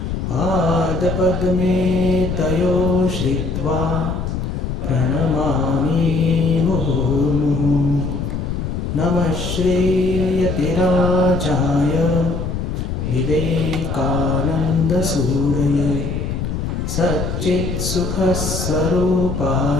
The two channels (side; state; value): left; noise; rumble, 3 dB below the sound